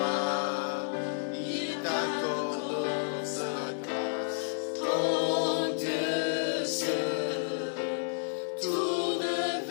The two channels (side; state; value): right; silent; digital silence